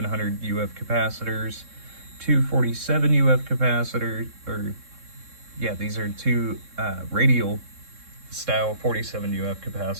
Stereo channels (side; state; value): left; late; 3.7 ms